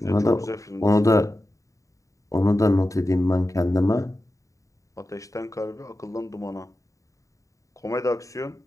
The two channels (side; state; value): right; late; 0.16 ms